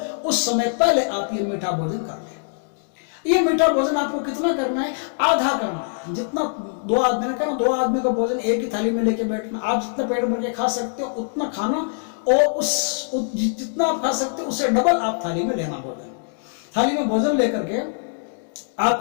उस समय पहले आप ये मीठा भोजन कर लें। ये मीठा भोजन आपको कितना करना है? आधा करना है। जितना 2 आदमी ने कहा, 2 आदमी का भोजन एक ही थाली में लेके बैठना। आप जितना पेट भर के खा सकते हो उतना खाना और जितना आप खा सकते हो उससे डबल आप थाली में लेना भोजन। थाली में भोजन लेकर के आप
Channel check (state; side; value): silent; right; digital silence